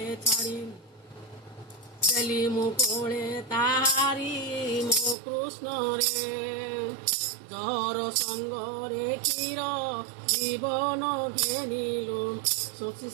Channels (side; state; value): left; drops out; at 5.2 s